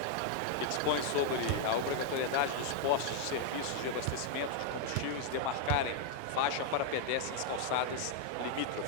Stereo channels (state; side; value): different; both; correlation 0.00